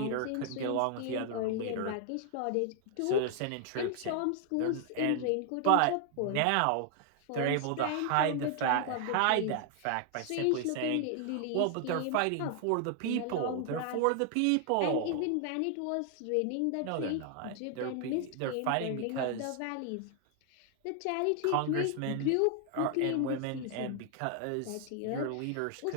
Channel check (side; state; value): both; different; correlation 0.00